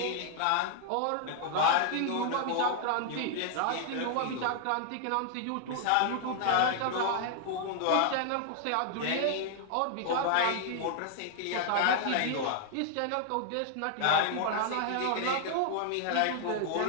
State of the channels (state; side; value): different; both; correlation 0.00